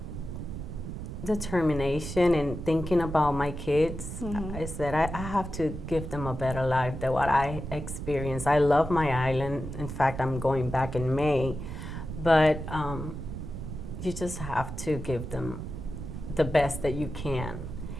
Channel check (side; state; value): right; noise; rumble, 7 dB below the sound